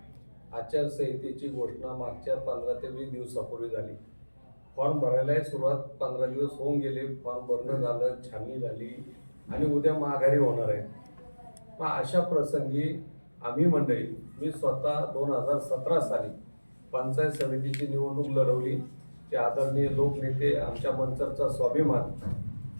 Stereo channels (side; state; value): both; inverted; correlation -1.00